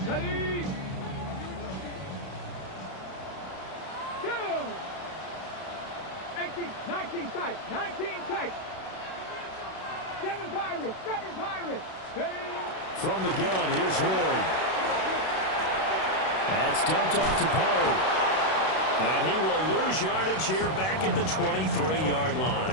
line. Ready? 19 tight, 19 tight. 7 Pirates, 7 Pirates. Ready? From the gun, here's Ward. That's dumped off to Poe. And he will lose yardage here back at the 23-yard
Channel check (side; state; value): right; late; 32 ms